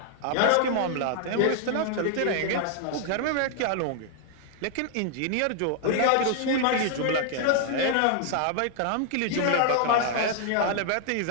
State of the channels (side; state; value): both; different; correlation 0.00